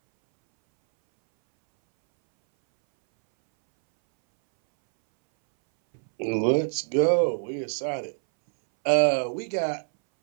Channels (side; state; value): left; silent; 62 dB below the other